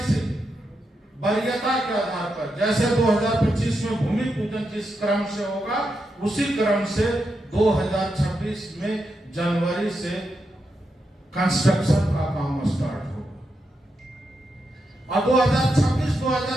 से वरीयता के आधार पर, जैसे 2025 में भूमि पूजन जिस क्रम से होगा, उसी क्रम से 2026 में जनवरी से कंस्ट्रक्शन का काम स्टार्ट होगा। और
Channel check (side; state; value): both; normal; correlation 0.85